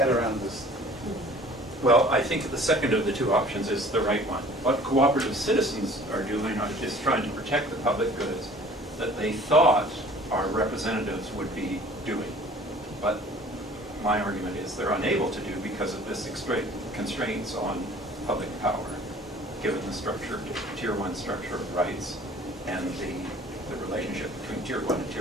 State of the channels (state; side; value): normal; both; correlation 0.49